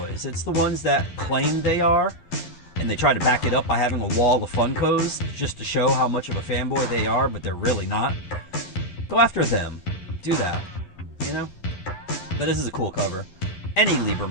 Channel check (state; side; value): late; right; 11 ms